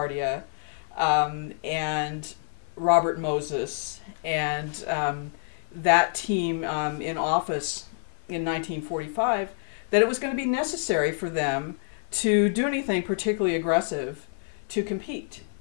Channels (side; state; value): right; silent; digital silence